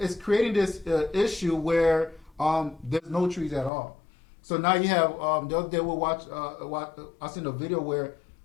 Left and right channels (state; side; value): drops out; right; at 3.7 s